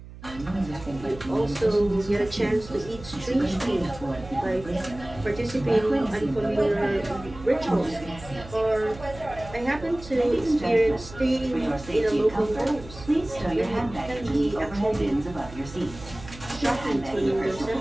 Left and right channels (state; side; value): noise; right; hum, 16 dB below the sound